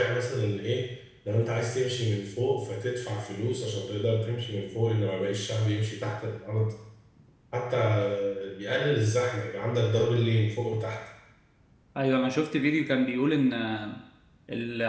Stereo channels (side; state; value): both; identical; correlation 1.00